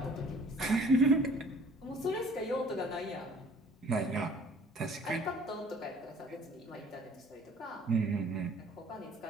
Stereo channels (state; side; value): normal; both; correlation 0.53